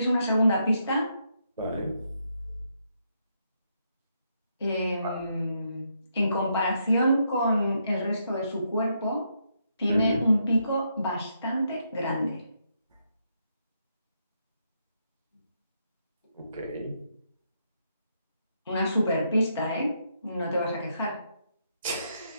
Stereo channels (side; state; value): both; inverted; correlation -0.78